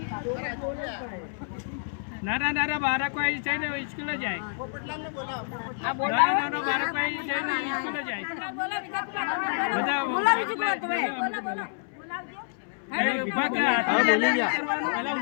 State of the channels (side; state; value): right; silent; 59 dB below the other